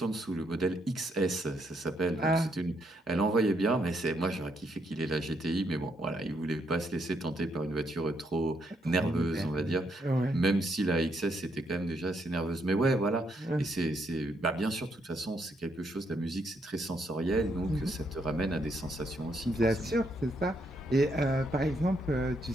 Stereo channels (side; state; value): both; normal; correlation 0.75